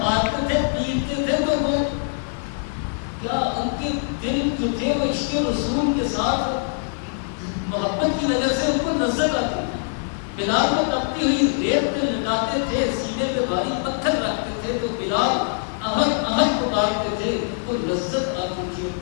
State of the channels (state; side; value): silent; right; digital silence